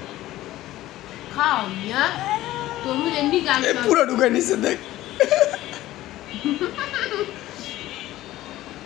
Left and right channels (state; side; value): quieter; right; 15.5 dB